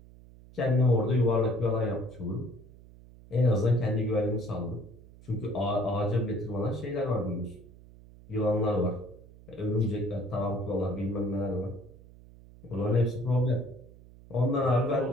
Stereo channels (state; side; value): noise; right; hum, 21 dB below the sound